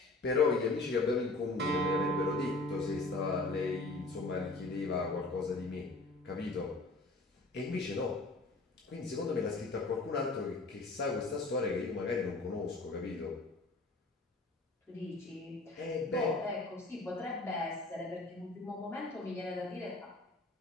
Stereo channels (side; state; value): right; quieter; 3.1 dB